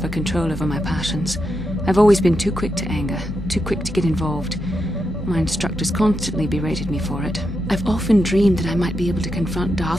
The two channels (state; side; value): normal; both; correlation 0.85